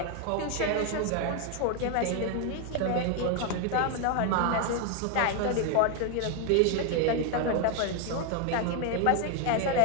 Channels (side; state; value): both; different; correlation 0.01